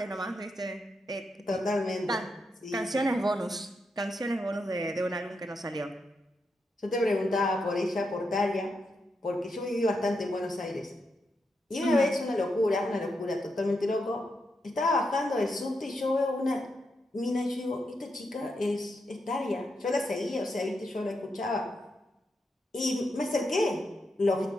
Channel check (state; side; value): normal; both; correlation 0.83